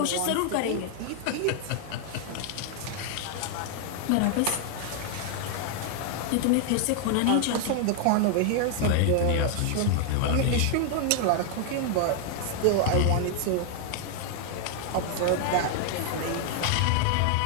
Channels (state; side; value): different; both; correlation 0.00